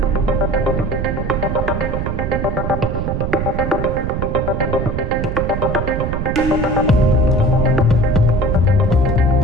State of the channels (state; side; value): noise; right; rumble, 2 dB below the sound